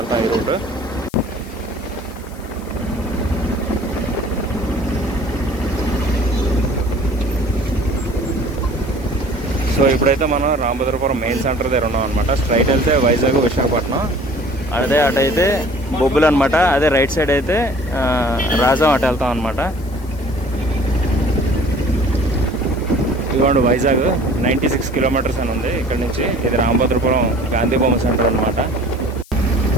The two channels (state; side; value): noise; left; hiss, 24 dB below the sound